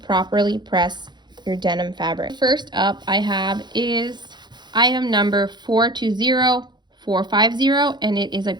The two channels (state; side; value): late; left; 0.21 ms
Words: press your denim fabric. First up I have is item number 420450, and it is a